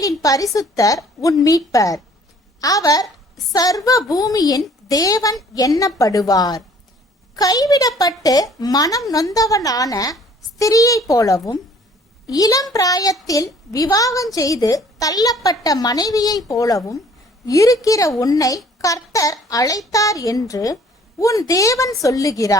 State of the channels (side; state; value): both; normal; correlation 0.55